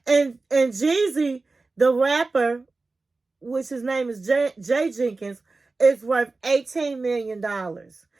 And Jeezy, the rapper, which his name is Jay Jenkins, is worth $18 million.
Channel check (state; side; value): quieter; left; 3.6 dB